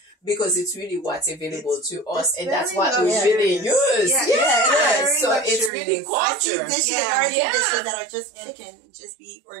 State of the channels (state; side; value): drops out; left; at 5.7 s